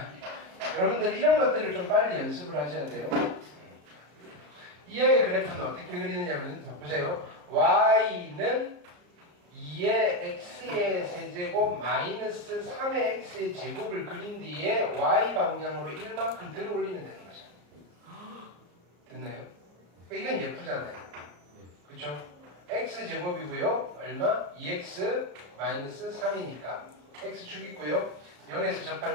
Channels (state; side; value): late; left; 34 ms